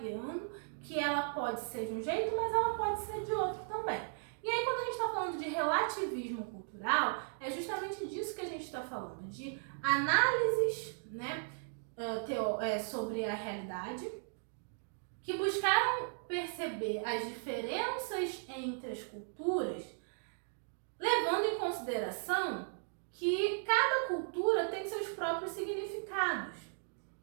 que ela pode ser de um jeito, mas ela pode ser de outro também. E aí, quando a gente está falando de relativismo cultural, é justamente disso que a gente está falando, de análises, né, sobre a realidade, que buscaram perceber as diferenças entre as culturas, levando em consideração que cada cultura tem seus próprios significados.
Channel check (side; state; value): left; silent; digital silence